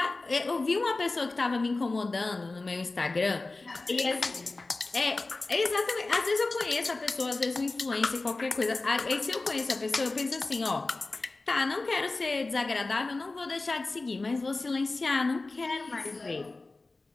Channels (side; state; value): right; quieter; 3.4 dB